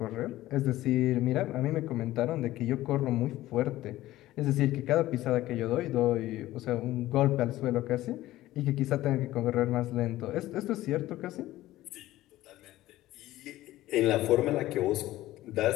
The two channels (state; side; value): quieter; right; 15.8 dB